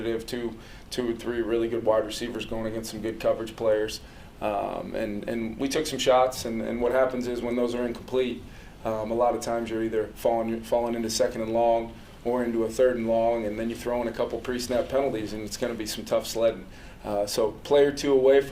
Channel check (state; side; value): identical; both; correlation 1.00